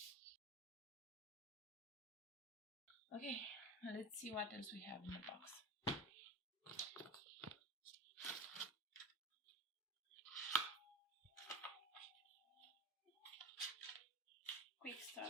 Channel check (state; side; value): normal; both; correlation 0.25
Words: Okay, let's see what else we have in the box. Quick